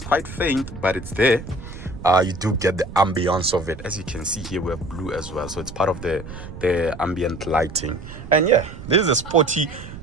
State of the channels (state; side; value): noise; right; rumble, 13 dB below the sound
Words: quite faint, but it's there. You do get the ambience of it. As you can see here, we have blue as well, so it's part of the ambient lighting. And yeah, this is a sporty.